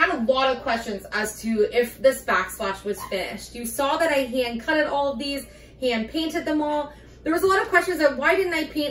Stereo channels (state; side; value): identical; both; correlation 1.00